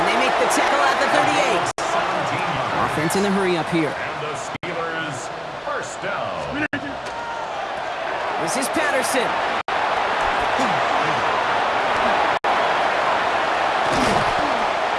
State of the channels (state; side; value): identical; both; correlation 1.00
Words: they make the tackle at the 38. Offense in the hurry up here. And the Steelers 1st down. This is Patterson.